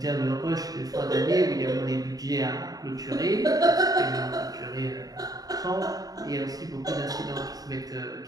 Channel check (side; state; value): left; late; 0.18 ms